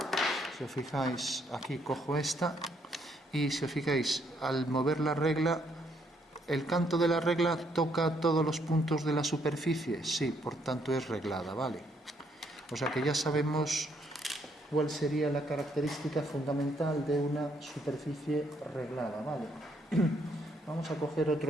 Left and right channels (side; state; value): both; normal; correlation 0.71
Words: Si os fijáis, aquí cojo esta y si os fijáis, al mover la regla, el canto de la regla toca todos los puntos de la superficie. Sí, por tanto es reglada, ¿vale? O sea que ya sabemos cuál sería la característica fundamental de una superficie reglada, ¿vale? Vamos a coger